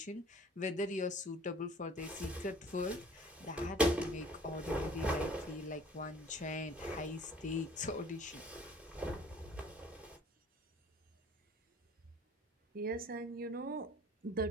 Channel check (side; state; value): both; normal; correlation 0.52